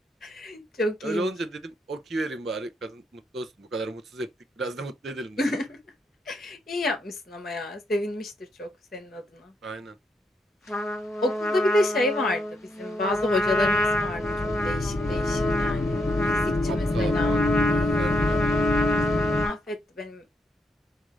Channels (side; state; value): both; normal; correlation 0.78